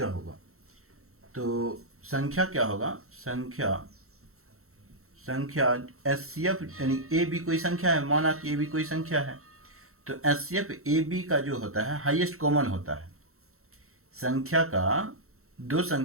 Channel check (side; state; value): left; late; 0.63 ms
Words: होगा, तो संख्या क्या होगा, संख्या एचसीएफ यानी ए बी कोई संख्या है, माना कि ए बी कोई संख्या है, तो एचसीएफ ए बी का जो होता है हाईएस्ट कॉमन होता है, दो